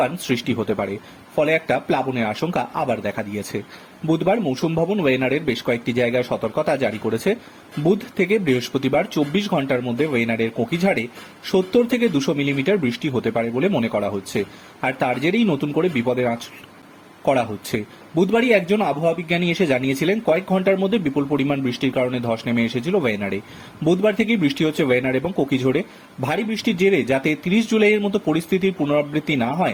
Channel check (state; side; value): identical; both; correlation 1.00